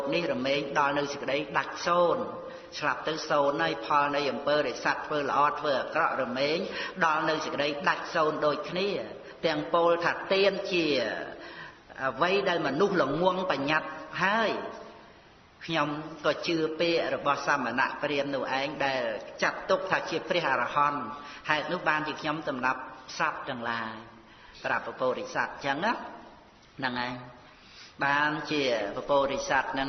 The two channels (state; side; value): identical; both; correlation 1.00